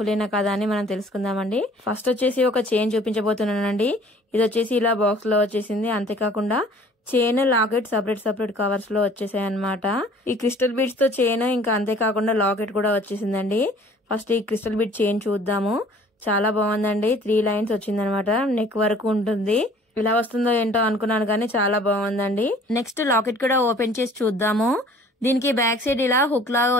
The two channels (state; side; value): normal; both; correlation 0.52